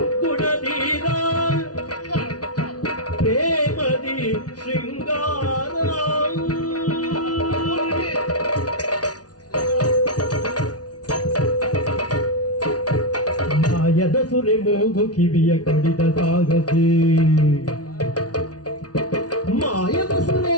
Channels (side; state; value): right; late; 0.68 ms